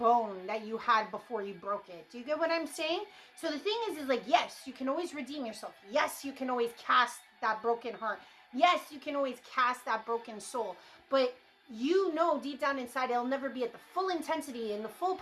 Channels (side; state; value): both; identical; correlation 1.00